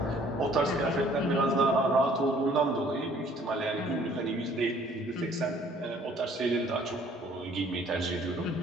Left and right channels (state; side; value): normal; both; correlation 0.58